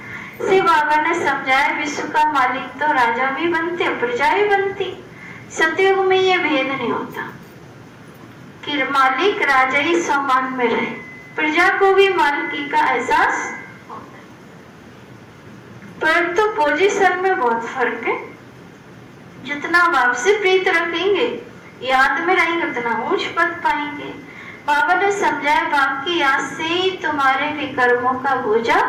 श्री बाबा ने समझाया विश्व का मालिक तो राजा भी बनते प्रजा भी बनती। सतयुग में ये भेद नहीं होता कि मालिक राजा ही समान में रहे, प्रजा को भी मालिकी का एहसास होता है। परंतु पोजीशन में बहुत फर्क है। जितना बाप से प्रीत रखेंगे, याद में रहेंगे, उतना ऊंच पद पाएंगे। बाबा ने समझाया बाप की याद से ही तुम्हारे विकर्मों का बोझा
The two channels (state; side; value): identical; both; correlation 1.00